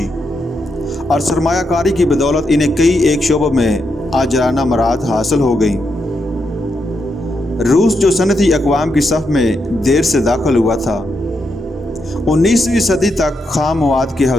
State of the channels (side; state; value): both; normal; correlation 0.82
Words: اور سرمایہ کاری کی بدولت انہیں کئی ایک شعبوں میں عاجلانہ مراد حاصل ہو گئی۔ روس جو صنعتی اقوام کی صف میں دیر سے داخل ہوا تھا، 19ویں صدی تک خام مواد کے